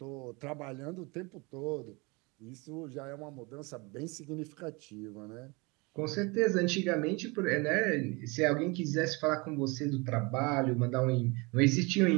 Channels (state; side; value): quieter; left; 27.3 dB